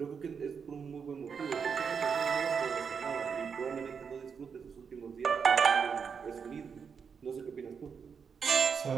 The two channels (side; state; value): left; quieter; 6.3 dB